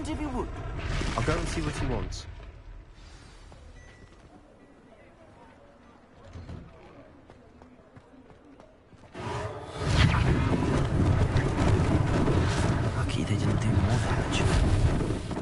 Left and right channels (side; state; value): both; identical; correlation 1.00